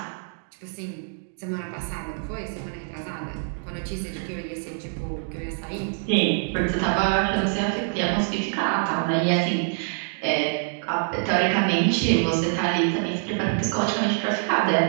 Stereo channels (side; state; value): left; silent; 62 dB below the other